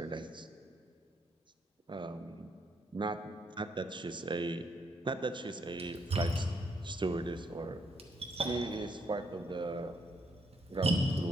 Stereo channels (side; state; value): both; normal; correlation 0.73